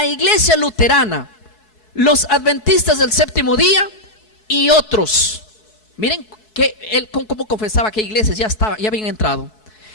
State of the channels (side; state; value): right; late; 4.7 ms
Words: Iglesia Luterana, los Adventistas del Séptimo Día y otros. Miren que él cómo confesaba que iglesias ya habían entrado.